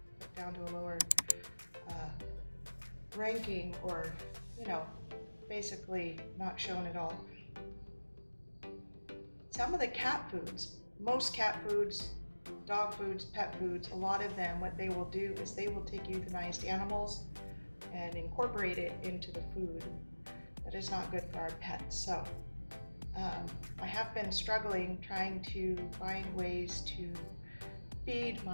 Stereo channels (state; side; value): inverted; both; correlation -1.00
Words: put down to a lower ranking, or basically not shown at all. Some of the cat foods, most cat foods, dog foods, pet foods, a lot of them, what they will do is they will take euthanized animals and incorporate it into the food. That is not good for our pets. So I have been struggling trying to find ways to feed